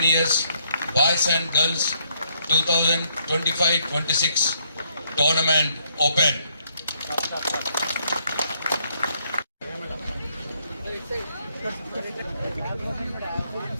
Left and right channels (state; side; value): inverted; both; correlation -0.72